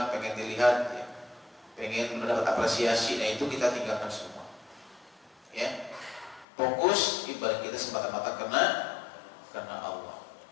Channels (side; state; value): right; drops out; at 6.5 s